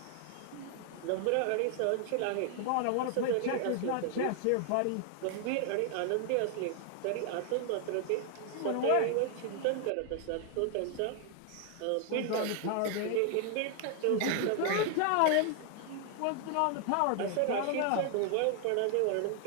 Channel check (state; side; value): different; both; correlation 0.00